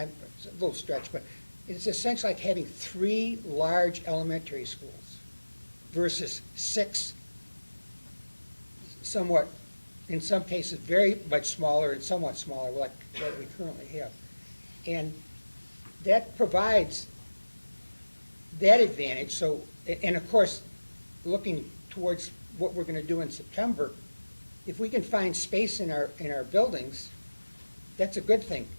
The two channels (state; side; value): inverted; both; correlation -1.00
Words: it's a little stretch, but it's essentially like having 3 large elementary schools versus 6 somewhat, in some cases, very much smaller and somewhat smaller, like what we currently have. And that provides that advantage. So, and of course, looking towards what we're going to do in September, if we can find space in our buildings, that's a good thing.